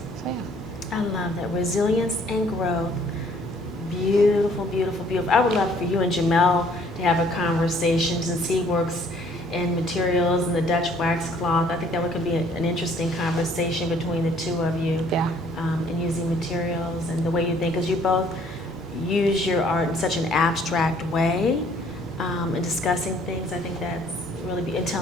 yeah. I love that, resilience and growth. Beautiful, beautiful, beautiful. I would love for you and Jamel to have a conversation, since he works in materials and the Dutch wax cloth. I think that could be an interesting conversation between the two of you. Yeah. And using materials and the way you think, because you both use your art in such an abstract way, and discussing things. I think that's really and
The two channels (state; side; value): normal; both; correlation 0.60